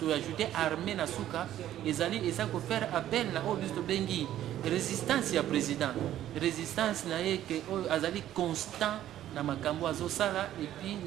ajouter armée na suka ezali eza ko faire appel na oyo biso to bengi résistance ya président, résistance na ye que oyo azali constant na makambo azosala, et puis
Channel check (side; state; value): left; quieter; 12.3 dB